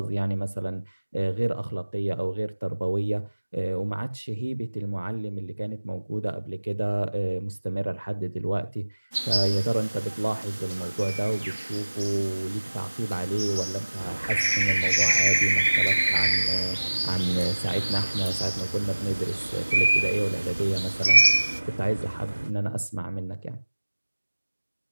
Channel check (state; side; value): inverted; both; correlation -1.00